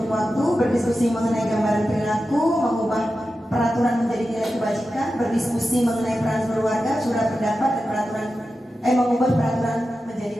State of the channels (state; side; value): normal; both; correlation 0.92